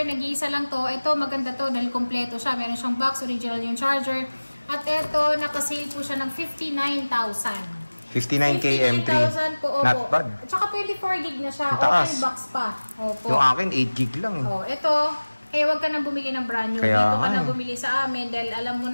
nag-iisa lang to. Ito maganda to dahil kompleto siya. Meron siyang box, original yung charger. At ito, nakasale po siya ng 59,000. 59K M3. 59,000 po, opo. Not bad. At saka 24 gig na siya. Taas. Open box pa. Opo. Yung akin, 8 gig lang. Ito, kaya wag ka nang bumili ng brand new. Kaya Dito ka na bumili sa amin dahil alam mo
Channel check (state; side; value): inverted; both; correlation -1.00